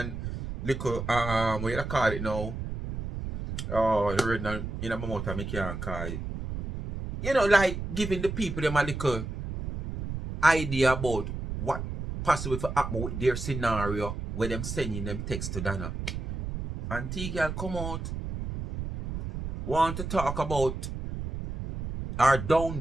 little, what you call it now? Oh, the red in my mouth, I can't call it. You know, like giving the people them a little idea about what possible to happen with their scenario where them sending them text to Donna. And T-Girl come out, want to talk about or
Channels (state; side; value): noise; right; rumble, 6 dB below the sound